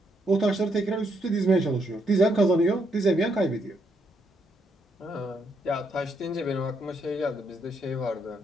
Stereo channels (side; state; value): both; normal; correlation 0.76